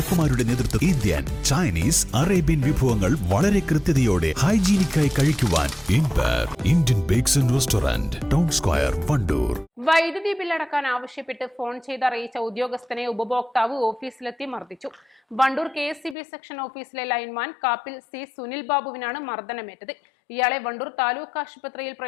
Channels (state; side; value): drops out; right; at 16.2 s